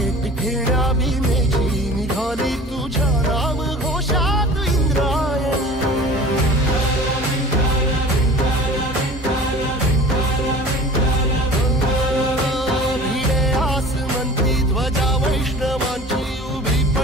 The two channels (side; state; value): both; normal; correlation 0.42